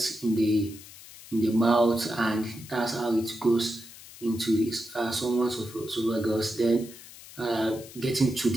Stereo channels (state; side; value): noise; left; hiss, 18 dB below the sound